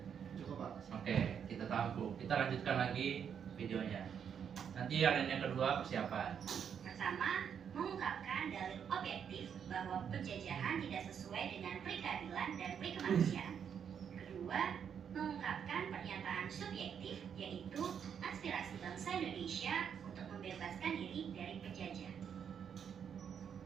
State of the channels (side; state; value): left; quieter; 7.8 dB